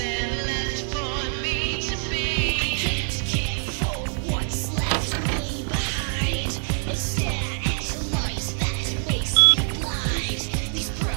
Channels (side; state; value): left; silent; 58 dB below the other